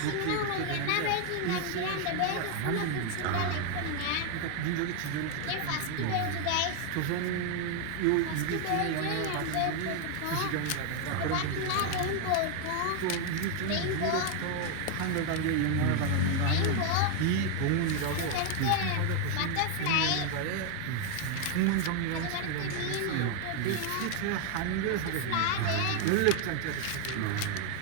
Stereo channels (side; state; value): both; different; correlation 0.01